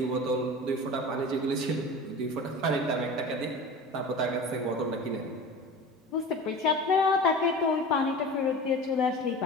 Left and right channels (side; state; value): both; normal; correlation 0.35